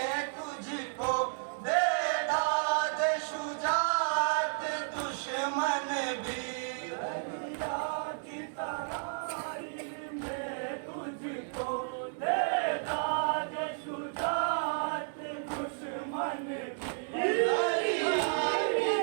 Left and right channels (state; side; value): silent; left; digital silence